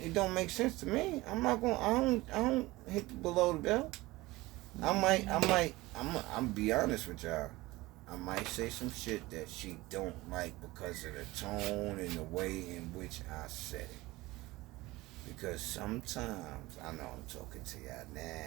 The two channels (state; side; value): quieter; left; 20.0 dB